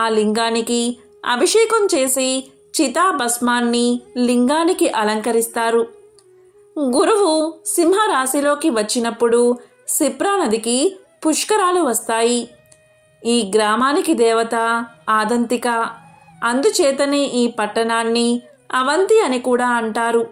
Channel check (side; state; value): both; identical; correlation 1.00